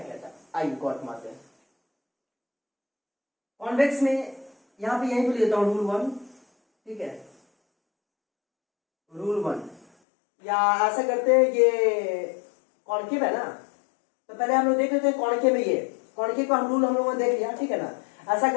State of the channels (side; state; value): right; drops out; at 9.9 s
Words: है। आई गॉट मारते हैं कॉन्वेक्स में, यहां पे यही भी लेता हूं रूल 1, ठीक है, रूल 1, या ऐसा करते हैं, ये कॉनकेव है ना, तो पहले हम लोग देख लेते हैं कॉनकेव में, ये कॉनकेव का रूल हम लोगों ने देख लिया, ठीक है ना। ऐसा